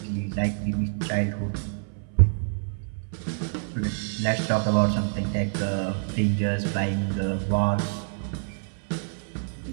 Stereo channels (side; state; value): left; silent; 60 dB below the other